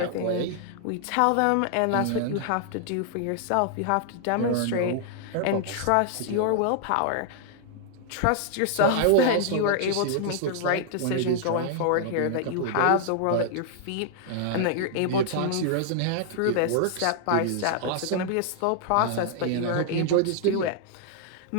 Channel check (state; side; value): different; both; correlation 0.00